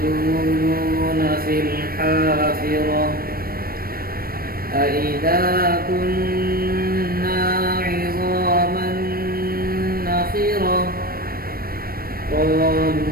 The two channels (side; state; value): left; late; 0.43 ms